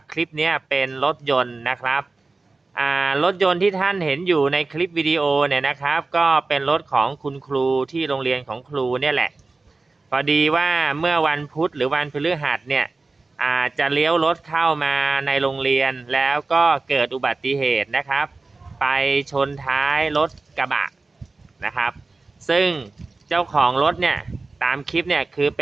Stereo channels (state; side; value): quieter; left; 3.6 dB